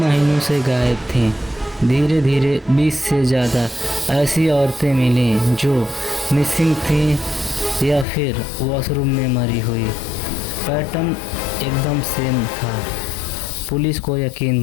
से गायब थीं। धीरे धीरे 20 से ज़्यादा ऐसी औरतें मिलीं जो मिसिंग थीं या फिर वॉशरूम में मरी हुई। पैटर्न एकदम सेम था। पुलिस को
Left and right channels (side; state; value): right; drops out; at 8.1 s